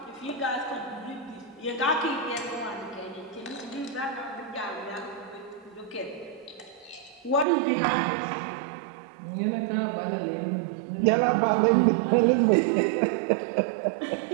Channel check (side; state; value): left; drops out; at 7.5 s